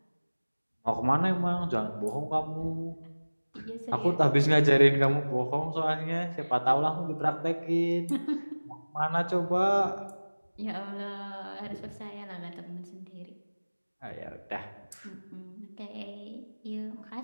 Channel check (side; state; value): both; inverted; correlation -1.00